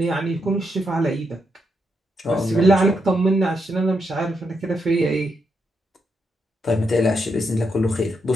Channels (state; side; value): normal; both; correlation 0.81